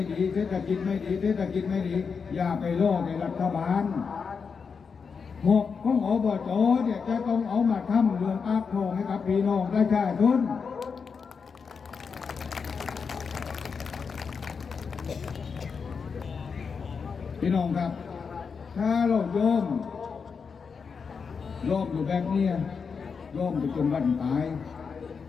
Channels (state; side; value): quieter; right; 5.7 dB